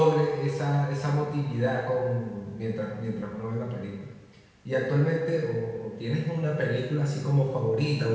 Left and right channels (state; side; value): identical; both; correlation 1.00